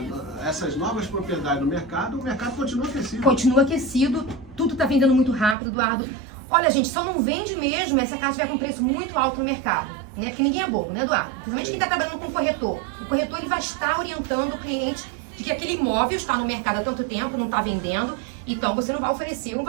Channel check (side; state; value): left; drops out; at 5.6 s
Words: essas novas propriedades no mercado, o mercado continua aquecido. Continua aquecido, tudo tá vendendo muito rápido, Eduardo. Olha, gente, só não vende mesmo essa casa tiver com preço muito alto no mercado, né? Porque ninguém é bobo, né, Eduardo? Principalmente quem tá trabalhando com o corretor. O corretor, ele vai estar orientando o cliente de que aquele imóvel está no mercado há tanto tempo, não tá vendendo, então você não vai oferecer um